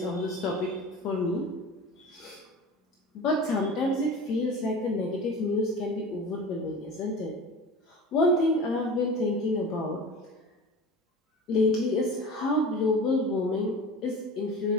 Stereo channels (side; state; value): both; normal; correlation 0.35